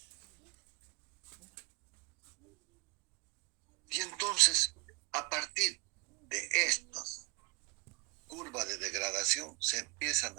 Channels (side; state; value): left; quieter; 25.3 dB